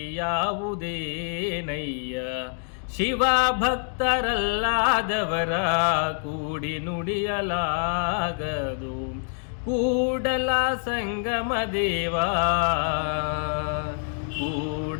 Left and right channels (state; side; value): silent; right; digital silence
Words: ಶಿವ ಭಕ್ತರಲ್ಲಾದವರ ಕೂಡಿ ನುಡಿಯಲಾಗದು, ಕೂಡಲ ಸಂಗಮ ದೇವ,